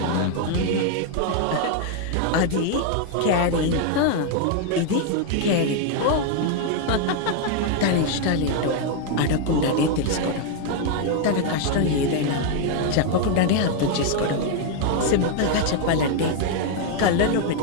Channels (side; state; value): both; different; correlation 0.00